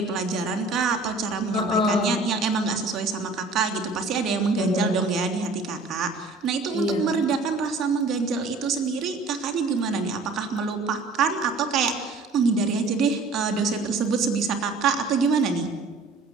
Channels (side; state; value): left; quieter; 3.5 dB